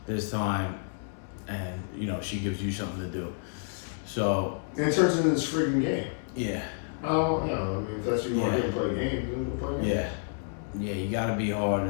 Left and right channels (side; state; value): right; silent; 58 dB below the other